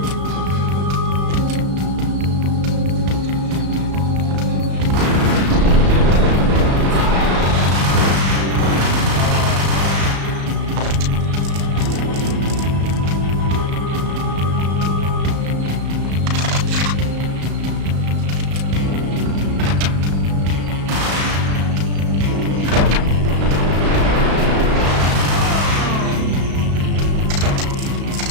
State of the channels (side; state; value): left; late; 35 ms